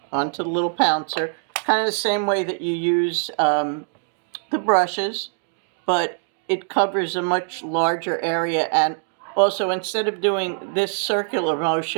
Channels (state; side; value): silent; left; digital silence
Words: onto the little pouncer, kind of the same way that you use the brushes, but it covers a much larger area. And also, instead of doing this circular